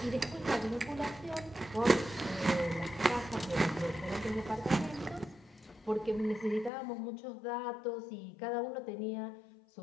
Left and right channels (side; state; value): right; drops out; at 6.7 s